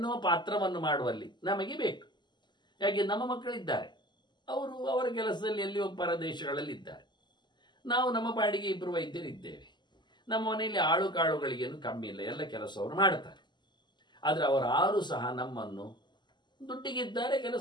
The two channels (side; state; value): right; late; 0.21 ms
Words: ಪಾತ್ರವನ್ನು ಮಾಡುವಲ್ಲಿ ನಮಗೆ ಬೇಕು. ಯಾಕೆ, ನಮ್ಮ ಮಕ್ಕಳಿದ್ದಾರೆ, ಅವರು ಅವರ ಕೆಲಸದಲ್ಲಿ ಎಲ್ಲಿಯೋ ಪರದೇಶಗಳಲ್ಲಿ ಇದ್ದಾರೆ, ನಾವು ನಮ್ಮ ಪಾಡಿಗೆ 2 ವೈದ್ಯರಿದ್ದೇವೆ. ನಮ್ಮ ಮನೆಯಲ್ಲಿ ಆಳು ಕಾಳುಗಳಿಗೇನು ಕಮ್ಮಿ ಇಲ್ಲ, ಎಲ್ಲ ಕೆಲಸವರು ಮಾಡ್ತಾರೆ. ಆದರೆ ಅವರಾರು ಸಹ ನಮ್ಮನ್ನು ದುಡ್ಡಿಗಿದ್ದಾರೆ,